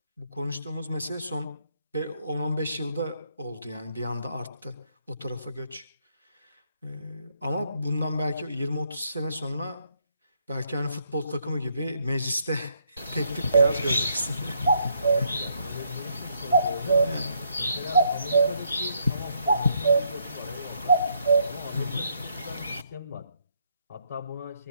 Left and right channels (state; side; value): inverted; both; correlation -0.73